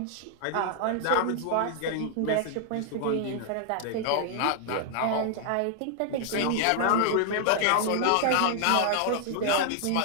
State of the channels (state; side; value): different; both; correlation 0.00